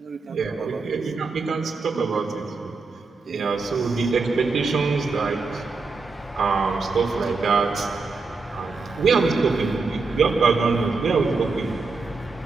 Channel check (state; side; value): quieter; left; 4.2 dB